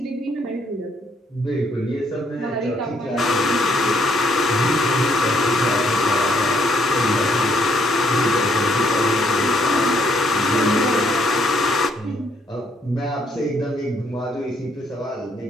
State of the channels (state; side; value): normal; both; correlation 0.69